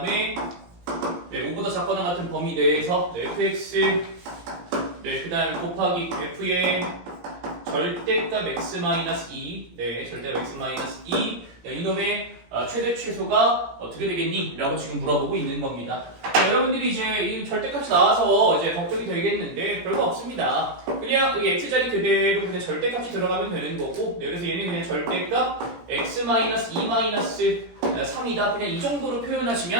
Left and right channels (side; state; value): left; late; 17 ms